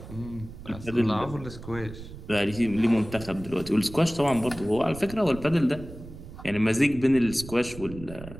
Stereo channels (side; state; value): right; noise; rumble, 14 dB below the sound